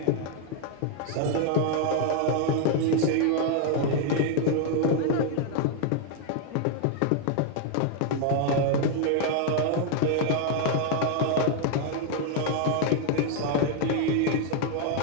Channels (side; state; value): both; different; correlation 0.00